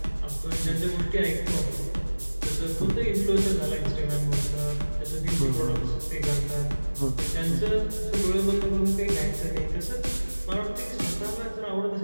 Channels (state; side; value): inverted; both; correlation -1.00